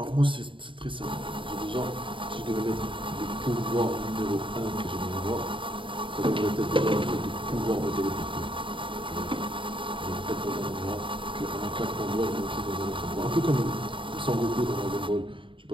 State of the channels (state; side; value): late; left; 0.25 ms